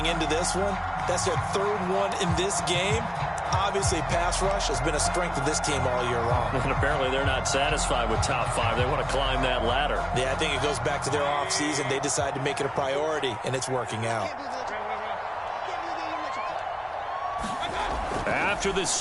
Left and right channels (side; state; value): both; identical; correlation 1.00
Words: into this one. That's their 3rd one in this game. Obviously, pass rush has been a strength of this team all year long. And apparently they're not satisfied with top 5. They want to climb that ladder. Yeah, I think it goes back to their offseason. They decided to make it a priority, and it's working out. After the